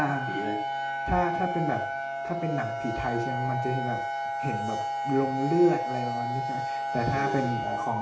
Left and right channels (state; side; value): identical; both; correlation 1.00